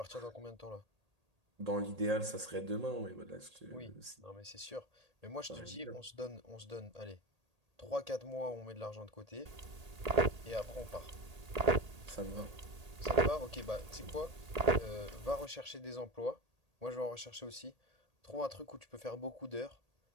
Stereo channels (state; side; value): late; left; 1.8 ms